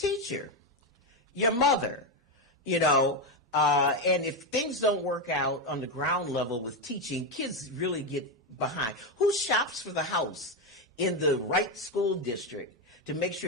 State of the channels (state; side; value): normal; both; correlation 0.09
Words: Your mother. And if things don't work out on the ground level with teaching, kids really get behind. Who shops for the house in the right school district to make